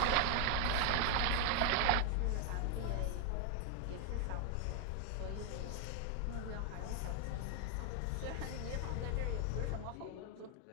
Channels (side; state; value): both; different; correlation 0.01